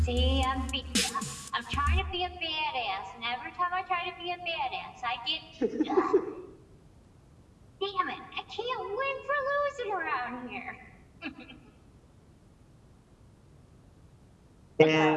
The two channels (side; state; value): both; identical; correlation 1.00